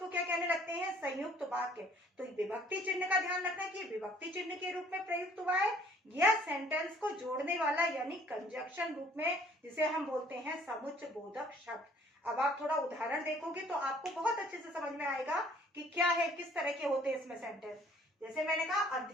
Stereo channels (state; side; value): normal; both; correlation 0.58